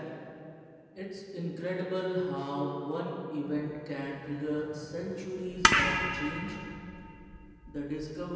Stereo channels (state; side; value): identical; both; correlation 1.00